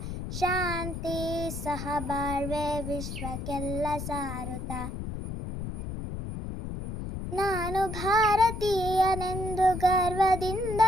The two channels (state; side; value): noise; left; rumble, 6 dB below the sound